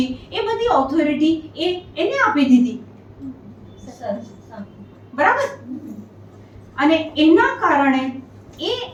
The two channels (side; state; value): both; identical; correlation 1.00